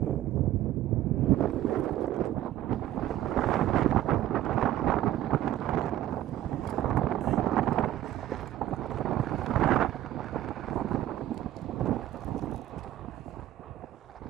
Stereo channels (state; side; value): quieter; left; 13.2 dB